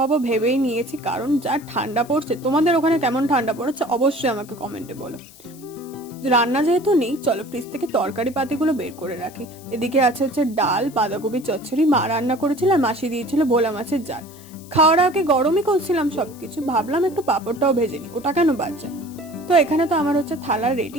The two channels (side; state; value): left; noise; hiss, 22 dB below the sound